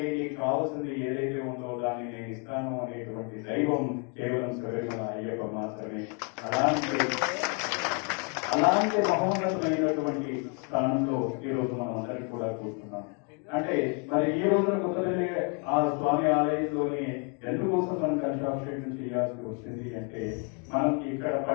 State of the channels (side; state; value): right; quieter; 37.5 dB